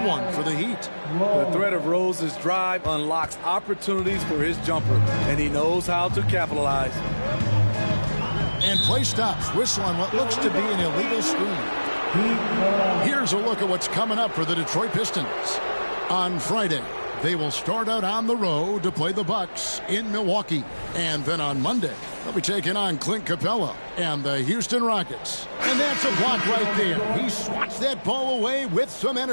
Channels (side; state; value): both; inverted; correlation -1.00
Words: one for the Heat. The threat of Rose's drive unlocks opportunities for his jumper, and he knows how to capitalize. And play stops. Whistle on what looks to be an illegal screen. Here's a look at what's coming up for the Detroit Pistons. On Friday, they will start out on the road to play the Bucks in Milwaukee. And then on Monday, they'll be taking on Clint Capella and the Houston Rockets. And that's a block right there. He swats that ball away with some